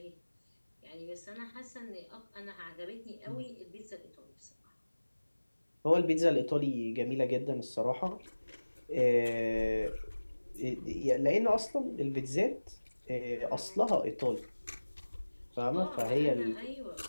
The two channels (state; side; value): inverted; both; correlation -1.00